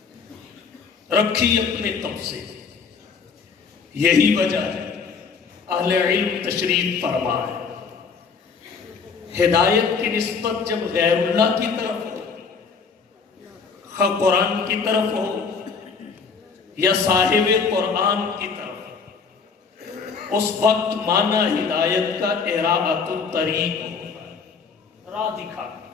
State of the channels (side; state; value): right; quieter; 5.4 dB